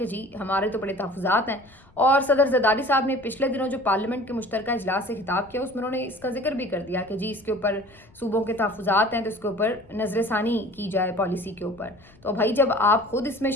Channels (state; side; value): noise; left; rumble, 28 dB below the sound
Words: जी हमारे तो बड़े तहफ़्फ़ुज़ात हैं। और सदर जरदारी साहब ने पिछले दिनों जो पार्लियामेंट के मुश्तरका इजलास से खिताब किया उसमें उन्होंने इसका जिक्र भी कर दिया कि जी इसके ऊपर सूबों के तहफ़्फ़ुज़ात हैं तो इसके ऊपर नज़रसानी की जाए पॉलिसी के ऊपर। तो भाई जब आप खुद इसमें